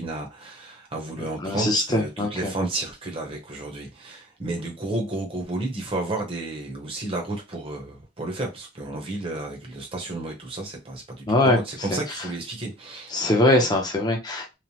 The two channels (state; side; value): normal; both; correlation 0.45